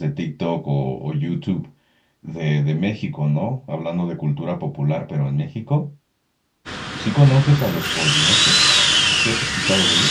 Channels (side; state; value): both; identical; correlation 1.00